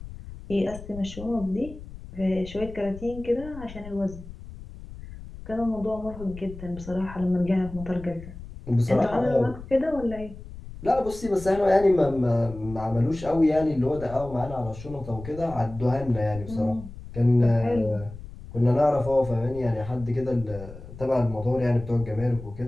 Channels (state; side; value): noise; left; rumble, 14 dB below the sound